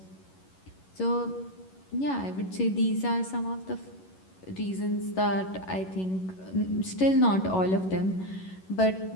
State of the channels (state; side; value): late; right; 11 ms